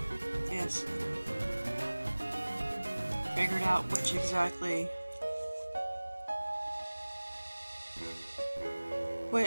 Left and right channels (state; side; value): inverted; both; correlation -1.00